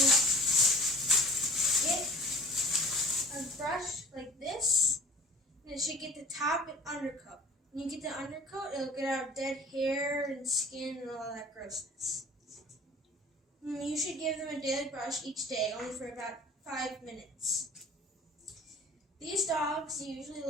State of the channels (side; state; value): both; normal; correlation 0.47